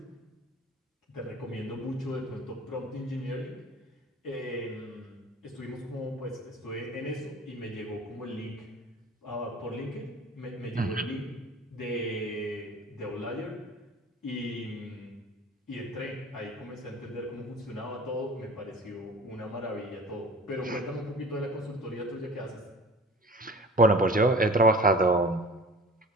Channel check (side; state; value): both; normal; correlation 0.42